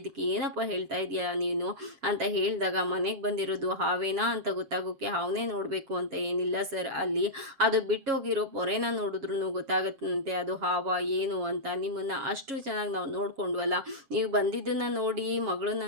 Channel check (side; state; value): left; late; 7.3 ms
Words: ಏನಪ್ಪ ಹೇಳ್ತಾ ಇದೆಯಾ ನೀನು ಅಂತ ಹೇಳಿದಾಗ, ಮನೆಗೆ ಬಂದಿರೋದು ಹಾವೇನಾ ಅಂತ ಗೊತ್ತಾಗೋಕ್ಕೆ ಹಾವನೇ ನೋಡಬೇಕು ಅಂತ ಏನಿಲ್ಲ ಸರ್, ಅಲ್ಲಿ ಅದು ಬಿಟ್ಟೋಗಿರೋ ಪೊರೆನ ನೋಡಿದ್ರೂ ಗೊತ್ತಾಗುತ್ತಂತೆ ಅದು ಹಾವ ಏನು ಅಂತ. ನಿಮ್ಮನ್ನು ಅಷ್ಟು ಚೆನ್ನಾಗಿ ನಾವು ನೋಡ್ಕೊಂಡ್ವಲ್ಲ, ನೀವು ಬಂದಿದ್ದನ್ನು ನೋಡಿ, ಮಗಳನ್ನ